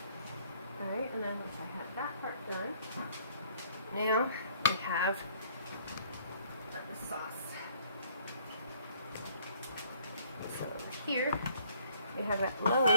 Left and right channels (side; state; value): both; inverted; correlation -0.61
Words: Alright, and then once I have that part done, now we have the sauce. So over here we have that